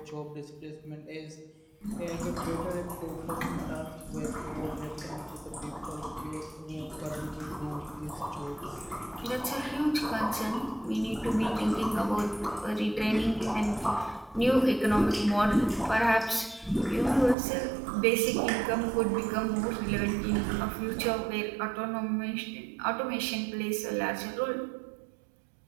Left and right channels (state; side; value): drops out; left; at 17.4 s